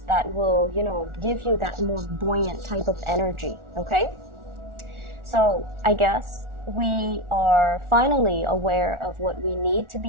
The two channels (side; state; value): left; late; 1.4 ms